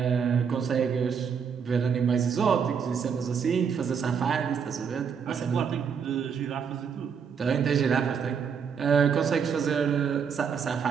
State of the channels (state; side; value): quieter; left; 6.7 dB